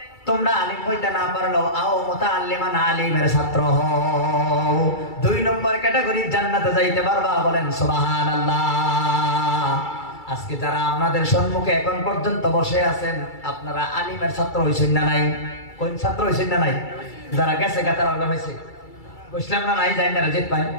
তোমরা আলিম হইতে না পারলেও আও মুতাআল্লিমান, আলিমের ছাত্র হও। 2 নম্বর ক্যাটাগরি জান্নাতে যাইতে পারবা। বলেন সুবহানাল্লাহ। আজকে যারা আপনাদের সম্মুখে এখন পর্যন্ত বসে আছেন, আপনারা আলিমের ছাত্র হইছেন না নাই? কোন ছাত্র হইছেন না নাই? যারা গেছে গাতার আলাদা হয়েছে, বুঝলাম না নাই, যাই না জিত পাই।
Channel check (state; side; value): late; right; 2.3 ms